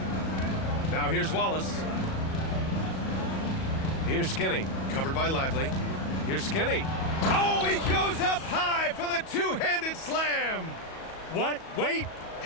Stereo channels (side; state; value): right; late; 37 ms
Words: Now here's Wallace. Here's Skinny, covered by Lively. Here's Skinny. Oh, he goes up high for the two-handed slam. What? Wait.